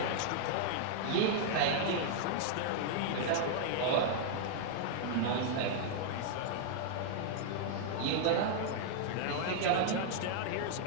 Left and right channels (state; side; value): different; both; correlation -0.01